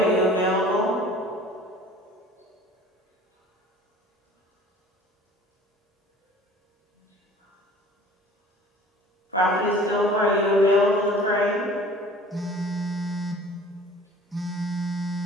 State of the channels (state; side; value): normal; both; correlation 0.48